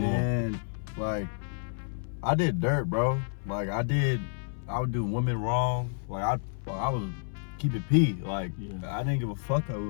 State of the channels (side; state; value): right; silent; 58 dB below the other